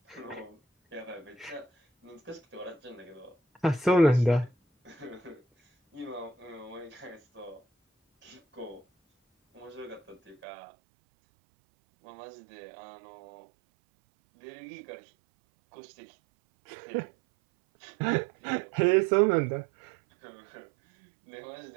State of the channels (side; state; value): left; drops out; at 10.4 s